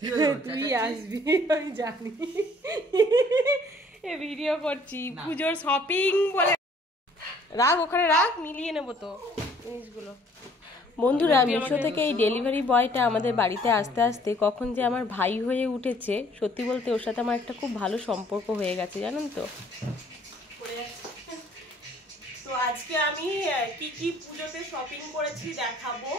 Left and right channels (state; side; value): normal; both; correlation 0.59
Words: তুই আসবি, আমি জানি। এ ভিডিও করছি পুজোর শপিং বলে, রাখ ওখানে রাখ, মিলিয়ে নেবো তো জিনিসগুলো। বন্ধুরা, মিশো থেকে এই ডেলিভারি বয়টা আমাদের বাড়িতে আসতে আসতে কখন যে আমার ভাই হয়ে উঠেছে, সত্যি বলতে ওর সাথে আমার একটা খুব ভালো সম্পর্ক হয়ে গেছে, জানেন তো। তো আজকে আমি কি কি পুজোতে শপিং করেছি দেখাবো,